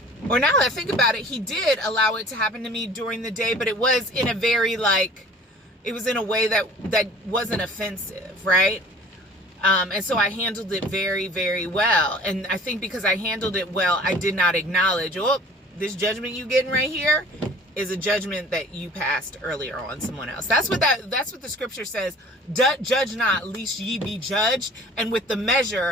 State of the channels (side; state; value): both; normal; correlation 0.48